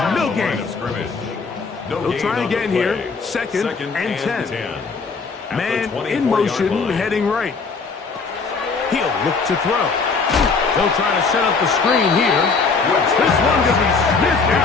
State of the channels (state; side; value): quieter; right; 4.7 dB